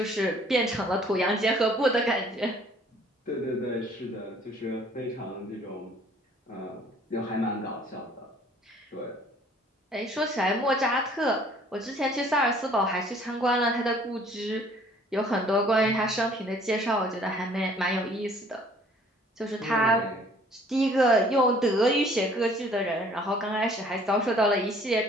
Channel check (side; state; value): both; normal; correlation 0.56